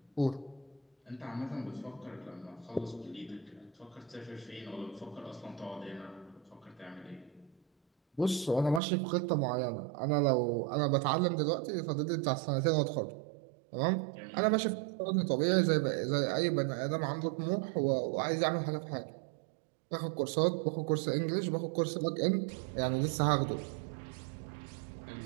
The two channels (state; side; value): drops out; left; at 8.8 s